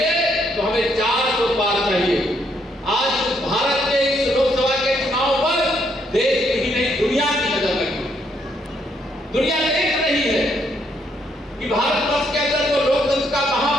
तो हमें 400 पार चाहिए। आज भारत के इस लोकसभा के चुनाव पर देश की ही नहीं दुनिया की नजर लगी। दुनिया देख रही है कि भारत वर्ष के अंदर जो लोकतंत्र का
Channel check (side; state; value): both; normal; correlation 0.73